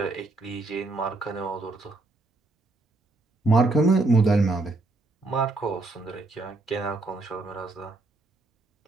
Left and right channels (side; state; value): left; quieter; 3.1 dB